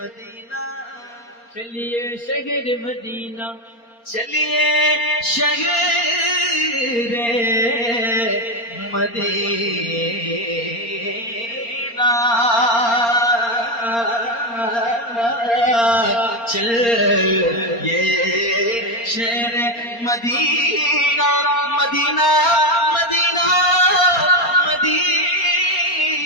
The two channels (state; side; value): late; right; 4.3 ms